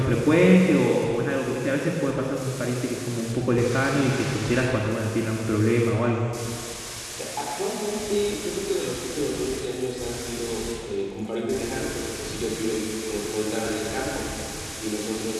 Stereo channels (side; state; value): both; identical; correlation 1.00